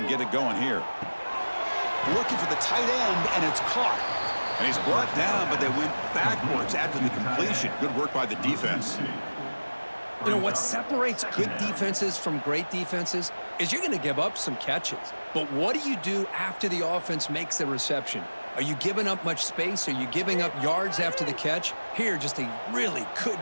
get it going here. Looking for the tight end, and it's caught. And he's brought down, but they went backwards after the completion. Good work by the defense. You know, what separates good defenses from great defenses is you're going to give up some catches. But what do you do after the offense makes the reception? Are you giving up much space? Are you giving up yards after the catch? Here, just a really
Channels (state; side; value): inverted; both; correlation -1.00